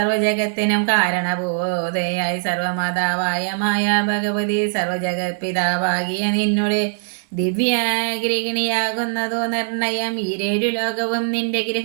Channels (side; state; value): left; silent; digital silence